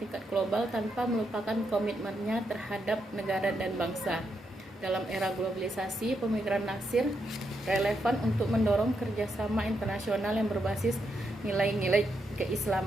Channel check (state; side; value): normal; both; correlation 0.81